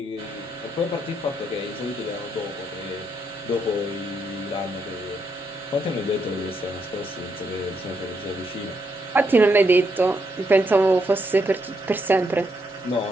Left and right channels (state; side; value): normal; both; correlation 0.78